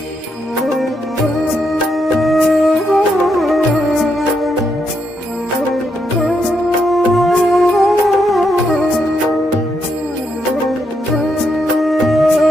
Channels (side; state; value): both; normal; correlation 0.79